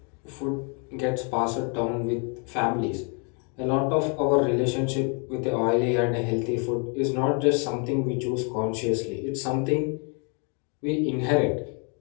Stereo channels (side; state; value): right; quieter; 38.2 dB